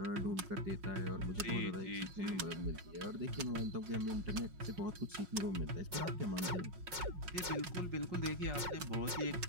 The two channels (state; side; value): late; left; 5.5 ms